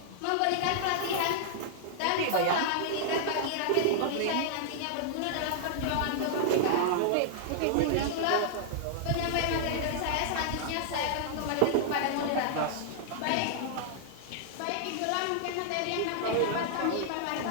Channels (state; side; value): different; both; correlation -0.01